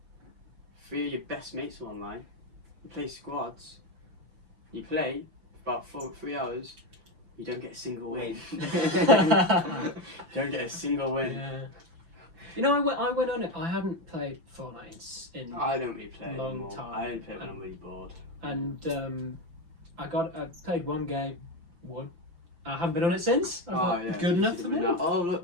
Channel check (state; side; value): late; left; 5.9 ms